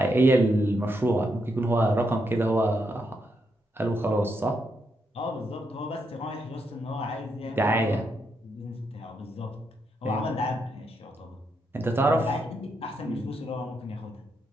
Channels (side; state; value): both; normal; correlation 0.80